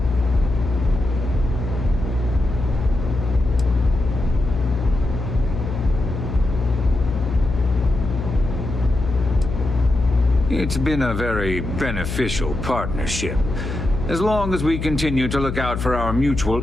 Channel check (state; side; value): noise; left; hum, 4 dB below the sound